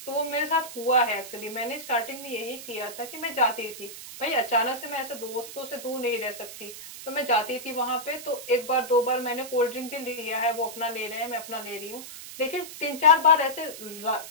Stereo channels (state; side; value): noise; right; hiss, 12 dB below the sound